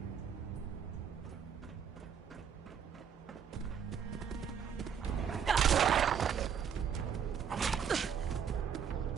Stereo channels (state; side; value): quieter; left; 7.6 dB